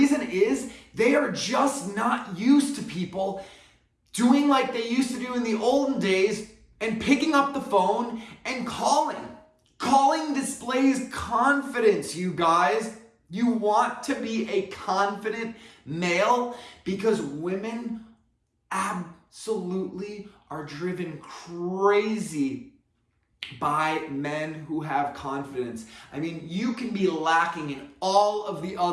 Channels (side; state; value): both; identical; correlation 1.00